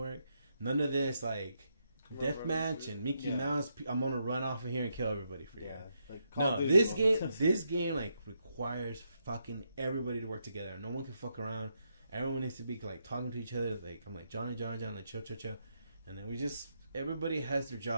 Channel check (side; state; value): both; inverted; correlation -0.80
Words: None of this like deathmatch and Mickey Yeah. Mouse. I'm gonna run off of here and kill everybody for you. Yeah. Like Call No, of Duty this mode. game like requires fucking everybody to work together. No one can fuck around. Everyone needs to be like talking to each other. Like I'm like Johnny, like chill, and then everybody has their